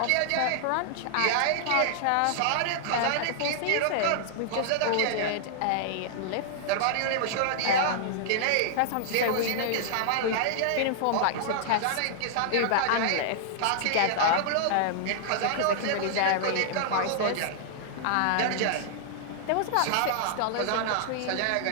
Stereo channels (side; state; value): both; different; correlation -0.01